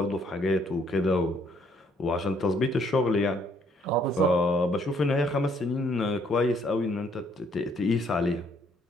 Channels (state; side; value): normal; both; correlation 0.66